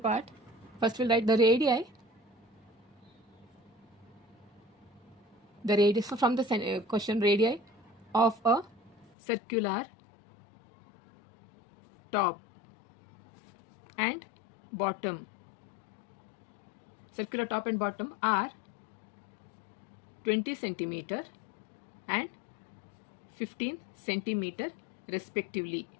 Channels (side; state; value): right; drops out; at 9.1 s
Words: First we'll write the radii. The radii, so from the question, radii of a circular top and bottom. Circular top and bottom are 20 centimeter and 15 centimeter respectively.